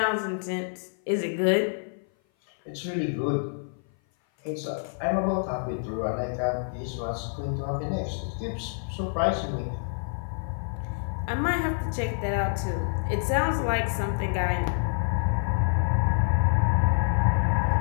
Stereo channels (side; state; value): right; silent; 56 dB below the other